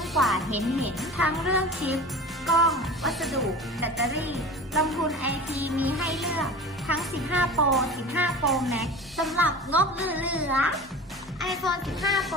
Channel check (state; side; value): normal; both; correlation 0.36